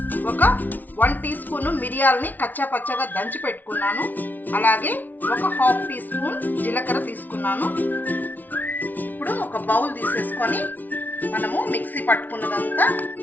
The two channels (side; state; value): right; late; 0.082 ms